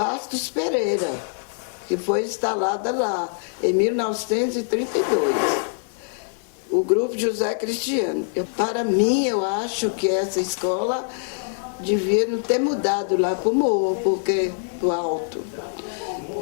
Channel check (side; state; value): right; silent; digital silence